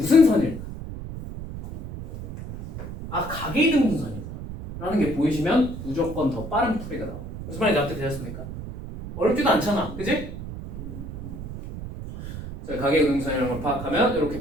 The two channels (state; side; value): noise; right; rumble, 9 dB below the sound